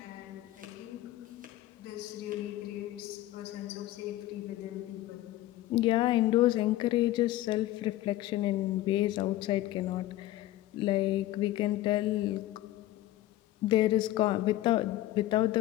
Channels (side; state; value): right; quieter; 15.4 dB